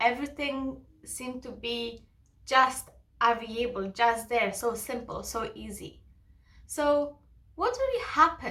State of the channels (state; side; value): identical; both; correlation 1.00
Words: Everything seemed to be just available, just there, so simple, so easy. So what really